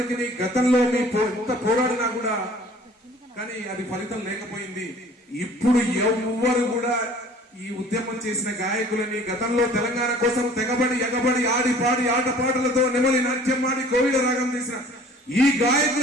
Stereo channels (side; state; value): both; normal; correlation 0.50